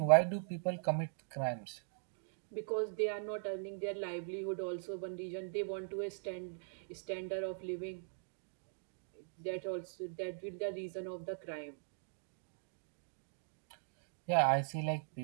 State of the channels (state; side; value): silent; left; digital silence